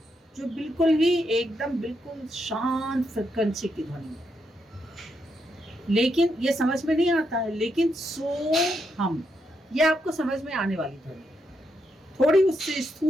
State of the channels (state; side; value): normal; both; correlation 0.81